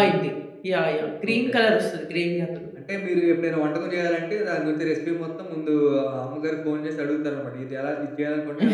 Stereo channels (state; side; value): identical; both; correlation 1.00